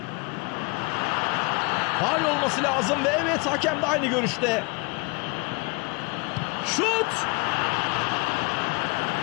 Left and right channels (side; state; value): right; quieter; 29.6 dB